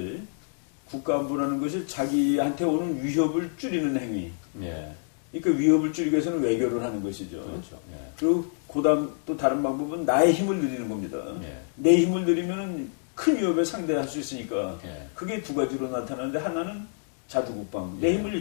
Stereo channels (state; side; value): silent; right; digital silence